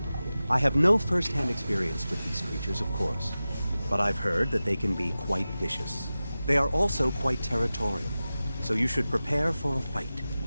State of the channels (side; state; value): both; inverted; correlation -0.95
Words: I have no first-hand experience with these creatures, of course, but I've heard that they can be quite vicious. They are also quite territorial, so you should prepare for a fight.